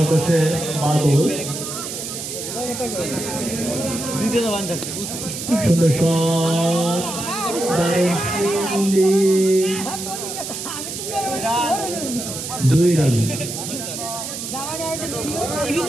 করছে বাদল। সুন্দর শট, 2 রান।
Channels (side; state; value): right; noise; hiss, 7 dB below the sound